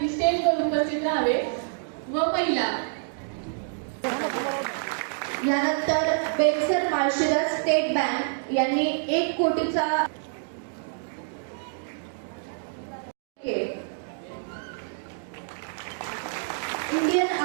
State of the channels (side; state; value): left; silent; digital silence